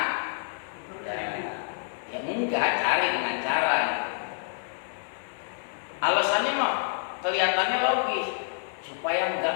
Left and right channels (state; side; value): silent; right; 57 dB below the other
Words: Ya enggak, cari dengan cara. Alasannya mah kelihatannya logis, supaya